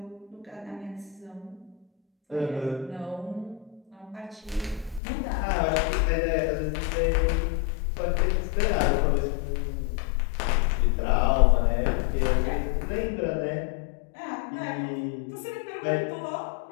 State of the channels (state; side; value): drops out; right; at 5.0 s